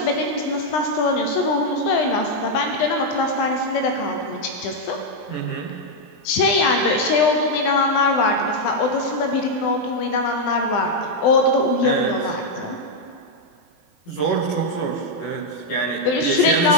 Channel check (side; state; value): right; late; 20 ms